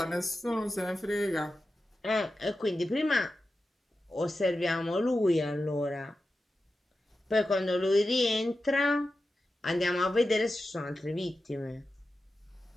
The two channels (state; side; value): normal; both; correlation 0.92